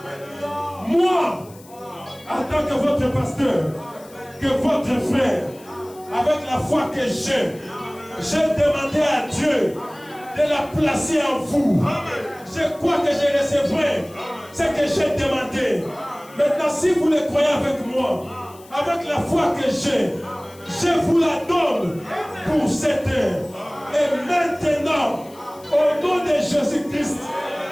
Moi, en tant que votre pasteur, que votre frère, avec la foi que j'ai demandé à Dieu de la placer en vous. Je crois que je recevrai ce que j'ai demandé. Maintenant, si vous le croyez avec moi, avec la foi que je vous la donne pour cette heure. Et maintenant, au nom de Jésus-Christ,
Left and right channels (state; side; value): noise; left; hiss, 24 dB below the sound